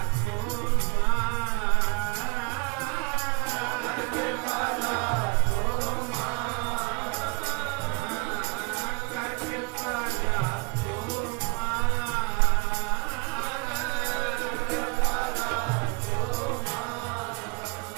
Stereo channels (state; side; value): quieter; left; 31.6 dB